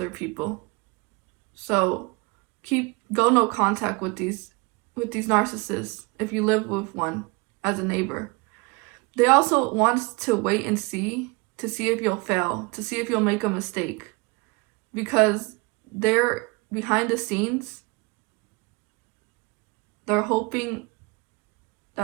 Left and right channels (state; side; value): quieter; left; 27.4 dB